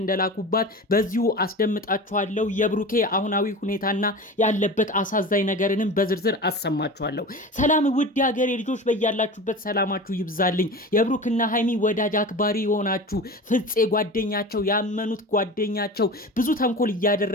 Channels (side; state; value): both; normal; correlation 0.32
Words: እንደላኩባት በዚሁ አስደምጣችኋለሁ። የብሩኬ አሁናዊ ሁኔታና ያለበት አሳዛኝ ነገርንም በዝርዝር አሰማችኋለሁ። ሰላም ውድ ሀገሬ ልጆች፣ በያላችሁበት ሰላማችሁ ይብዛልኝ። የብሩክና ሃይሚ ወዳጅ አክባሪ የሆናችሁ ፍፄ ጓደኛቸው ያመኑት ጓደኛቸው ብዙ ተንኮል